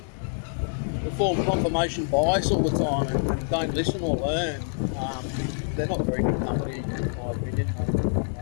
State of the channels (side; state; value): right; silent; digital silence